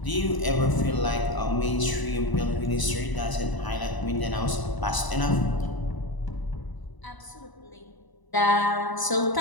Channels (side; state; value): right; late; 1.0 ms